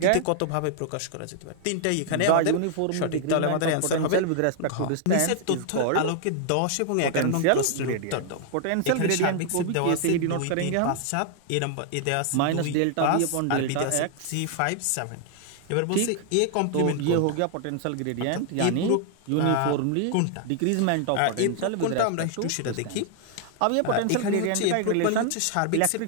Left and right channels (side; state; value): both; different; correlation 0.00